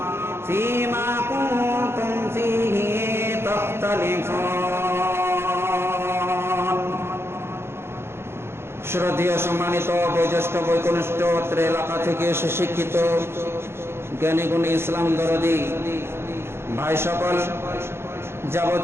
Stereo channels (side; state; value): left; late; 0.12 ms